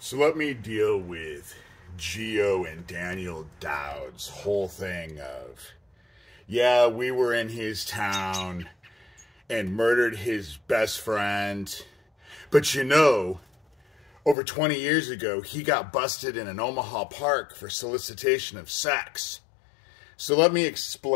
So let me deal with Geo and Daniel Dowd's whole thing of, yeah, we were in his town and murdered his best friend. But you know, over 20 years ago, he got busted in an Omaha park for solicitation of sex. So let me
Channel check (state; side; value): drops out; right; at 14.4 s